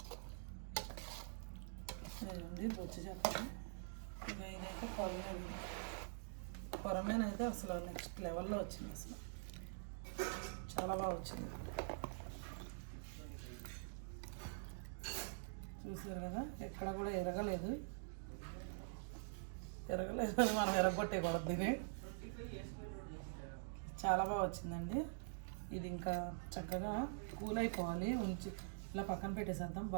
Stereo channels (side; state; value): left; silent; digital silence